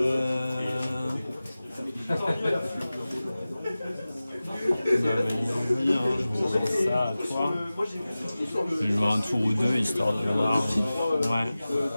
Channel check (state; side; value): inverted; both; correlation -0.97